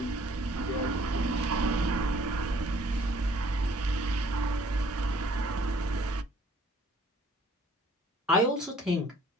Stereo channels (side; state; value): both; normal; correlation 0.58